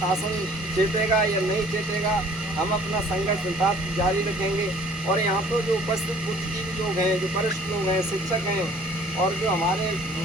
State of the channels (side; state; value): both; normal; correlation 0.54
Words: चेतेगा या नहीं चेतेगा। हम अपना संघर्ष निरंतर जारी रखेंगे। और यहाँ पर जो उपस्थित बुद्धिजीवी लोग हैं, जो वरिष्ठ लोग हैं, शिक्षक हैं, और जो हमारे